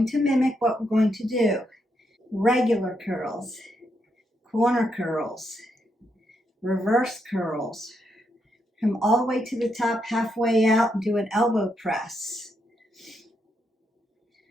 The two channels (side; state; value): both; normal; correlation 0.80